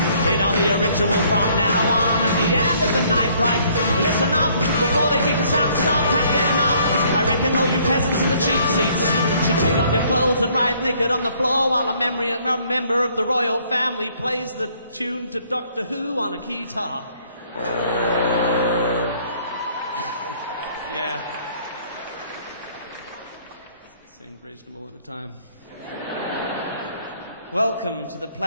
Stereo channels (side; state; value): both; inverted; correlation -0.62